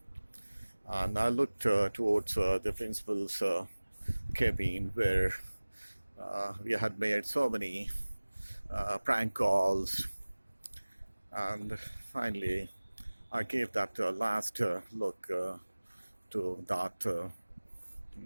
And I looked towards the principal's cabin, where we had made so many prank calls, and finally I gave that last look to that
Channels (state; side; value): inverted; both; correlation -1.00